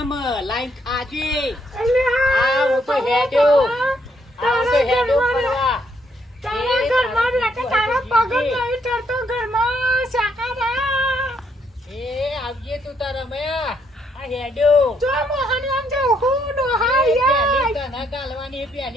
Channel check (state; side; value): normal; both; correlation 0.72